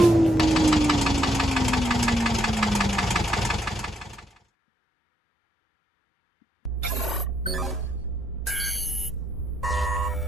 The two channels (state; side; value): normal; both; correlation 0.75